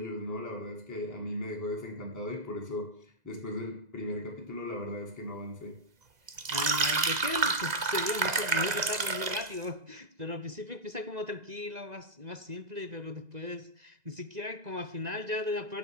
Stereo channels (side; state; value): left; late; 2.0 ms